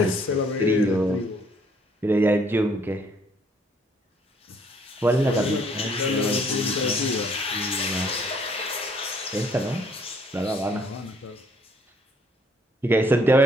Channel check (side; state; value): both; normal; correlation 0.64